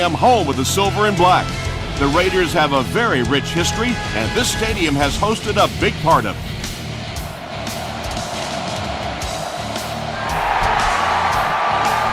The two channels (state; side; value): identical; both; correlation 1.00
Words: home of the Silver and Black. The Raiders have a very rich history, and this stadium has hosted a big part of it.